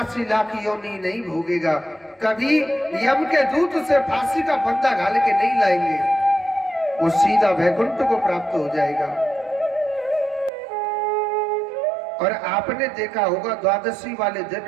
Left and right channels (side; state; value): left; drops out; at 10.5 s